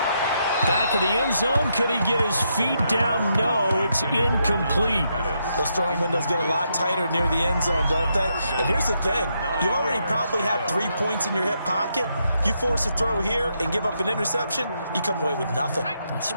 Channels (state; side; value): inverted; both; correlation -0.79